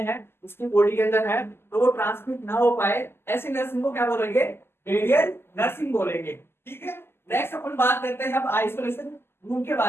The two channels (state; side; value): late; right; 0.12 ms